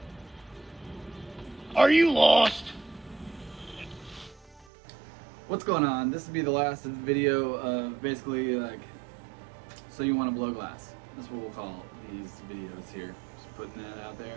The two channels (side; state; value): left; drops out; at 4.7 s